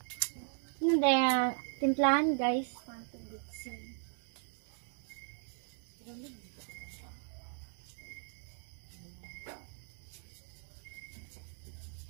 Hindi, timplahan guys.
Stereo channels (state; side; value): silent; left; 53 dB below the other